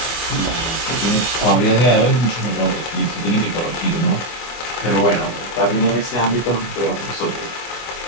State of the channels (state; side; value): late; right; 25 ms